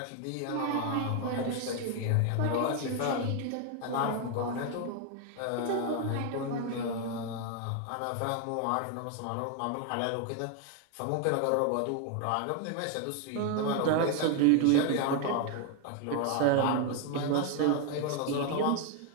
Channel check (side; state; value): both; different; correlation 0.01